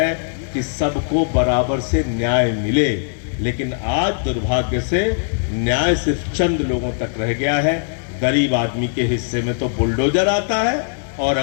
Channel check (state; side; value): silent; right; digital silence